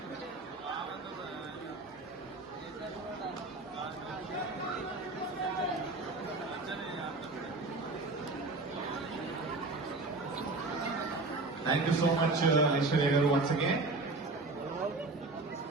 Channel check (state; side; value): quieter; left; 3.3 dB